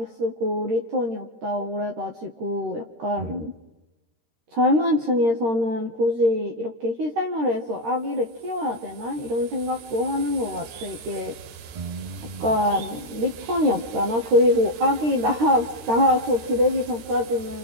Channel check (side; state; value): left; late; 13 ms